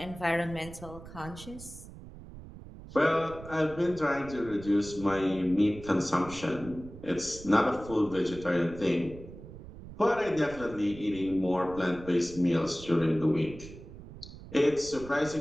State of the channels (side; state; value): right; noise; rumble, 15 dB below the sound